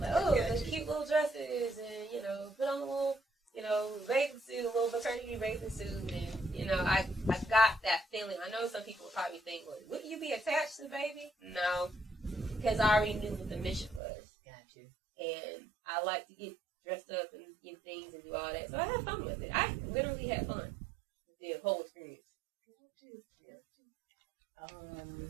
oh, the cute little dresses, and, put on a little, bathing suit, a little maternity bathing suit, and, I got that feeling. I know some people would probably think, well, would you be attached to the baby? No, because I already knew what the mission was. Gotcha. And I like to get dressed up and get things and do all that. So I had fun with it. I literally had fun with the whole experience. I'm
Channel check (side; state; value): left; drops out; at 14.0 s